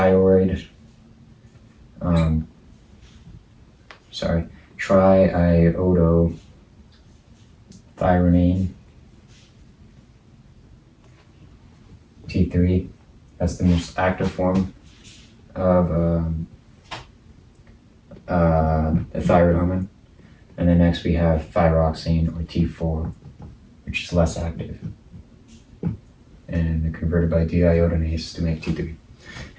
triiodothyronine, T3. That's the most active form of the thyroid hormone. And then next we have thyroxine, or T4, which is less active, and converted by deiodinase to make T3.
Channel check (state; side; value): identical; both; correlation 1.00